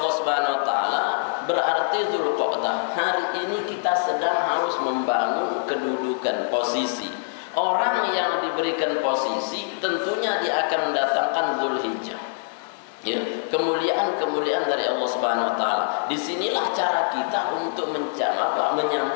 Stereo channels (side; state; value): right; silent; digital silence